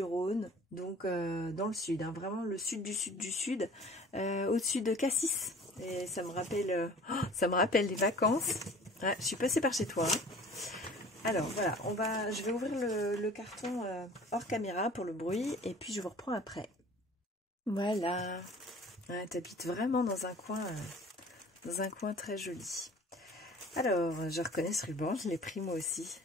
donc dans le sud, hein, vraiment le sud du sud du sud, au-dessus de Cassis. Et ça me rappelle les vacances. Ouais, je suis passée par chez toi. Hein. Alors voilà, je vais ouvrir le carton hors caméra pour le bruit et puis je vous reprends après. Voilà. Ouais, t'habites vraiment dans un coin très joli. Alors, je reconnais ce ruban, je l'ai pris moi aussi.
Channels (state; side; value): normal; both; correlation 0.47